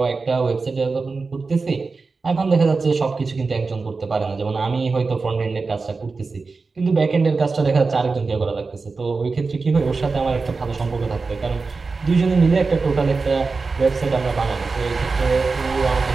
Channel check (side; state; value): left; quieter; 4.2 dB